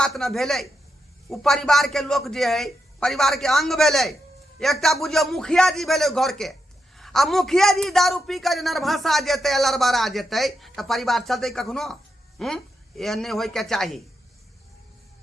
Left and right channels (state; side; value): normal; both; correlation 0.85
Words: न भेलै। उ परिवार के लोग जे है परिवार के अंग भेलै। एकटा बुझियो मुखिया जी भेलै घर के आ मुखिया जी दारू पी कर नरभसा जेतै लड़बड़ा जेतै त परिवार चलतै कखनो। एहन नहीं होय के चाही।